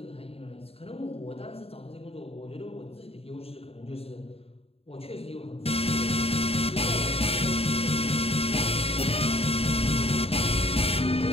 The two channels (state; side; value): late; right; 0.28 ms